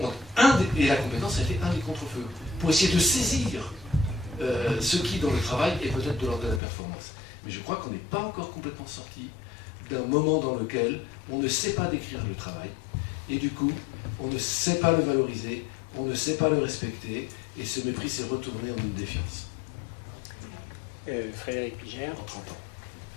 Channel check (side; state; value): right; drops out; at 6.6 s